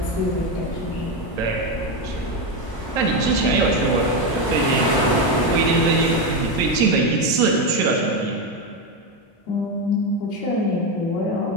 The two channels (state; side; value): late; right; 1.0 ms